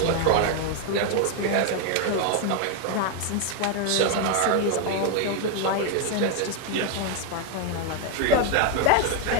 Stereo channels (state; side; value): different; both; correlation 0.01